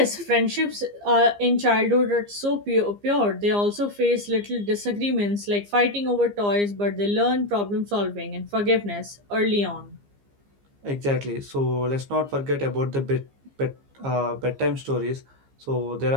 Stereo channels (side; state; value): left; late; 15 ms